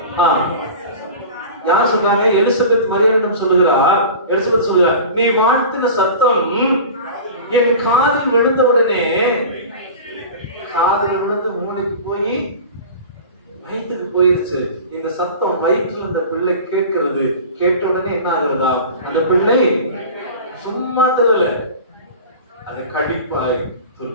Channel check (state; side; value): inverted; both; correlation -0.36